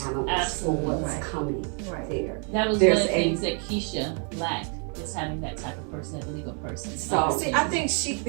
analyst for Absolutely. what's Right. coming Right. there. That was There's one of the a- things that Keisha lacked, is having that type of person, that legal person. So- See, I think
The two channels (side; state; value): left; quieter; 39.6 dB